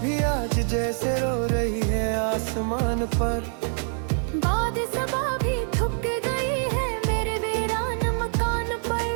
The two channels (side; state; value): left; silent; 61 dB below the other